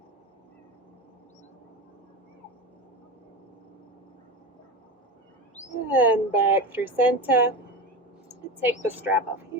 And back through center. Take the strap off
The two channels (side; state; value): both; normal; correlation 0.23